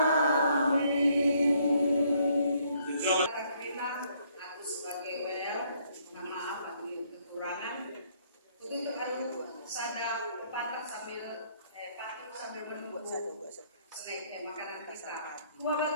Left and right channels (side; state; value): both; inverted; correlation -0.67